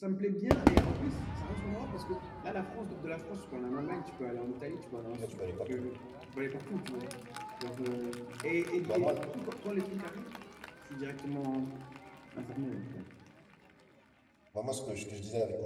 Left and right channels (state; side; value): identical; both; correlation 1.00